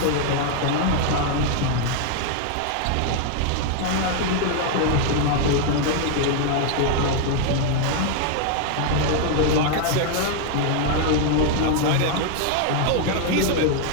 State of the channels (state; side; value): different; both; correlation 0.00